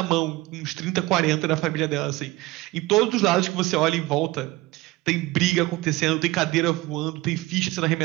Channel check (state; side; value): quieter; left; 19.9 dB